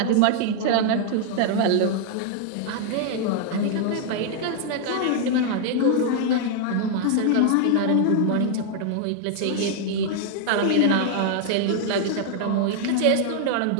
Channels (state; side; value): different; both; correlation 0.00